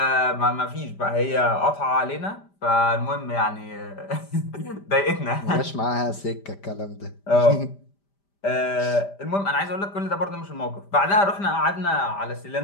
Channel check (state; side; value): late; right; 5.0 ms